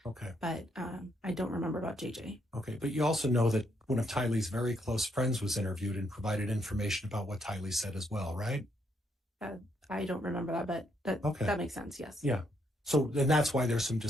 Okay. But I don't remember about JJ. Okay. But you also know that one of Tylee's very close friends was interviewed and provided information about what Tylee said as well, right? I don't remember that, but that makes sense. Yes. Yeah. So then that's why there's some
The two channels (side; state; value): both; normal; correlation 0.74